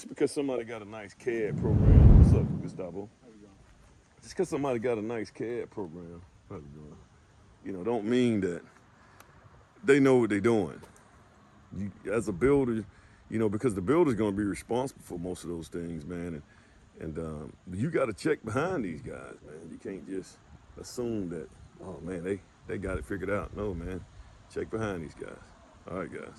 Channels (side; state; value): both; identical; correlation 1.00